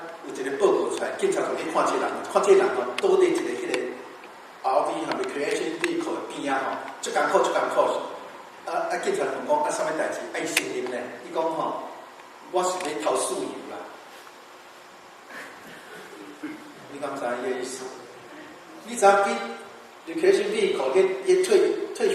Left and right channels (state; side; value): identical; both; correlation 1.00